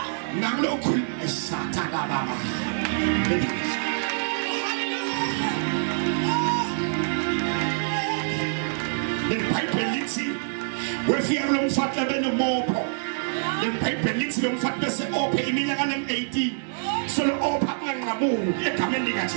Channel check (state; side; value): silent; left; 61 dB below the other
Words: nangilokhuluma esathana baba. The Bible lithi wefika lo mfati abenomopho. The Bible lithi lo mfati bese ophe iminyaka em18. So lo opha kunganqamuki egameni